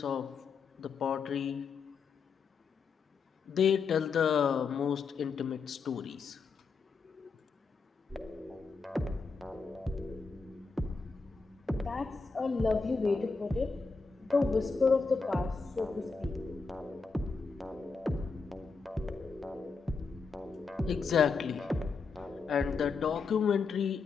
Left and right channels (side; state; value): right; quieter; 4.8 dB